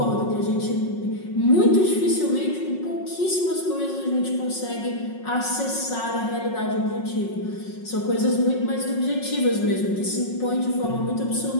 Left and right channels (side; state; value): right; late; 5.5 ms